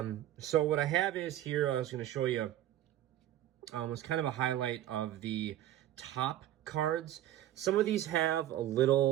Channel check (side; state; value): left; quieter; 12.9 dB